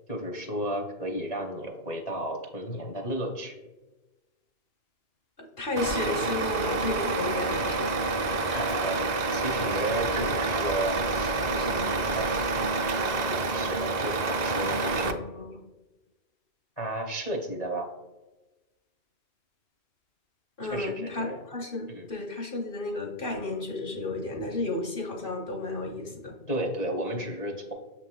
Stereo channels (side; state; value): right; late; 2.0 ms